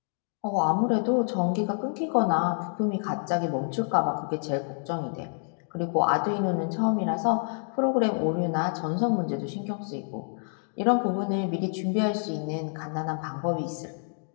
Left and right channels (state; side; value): silent; right; 56 dB below the other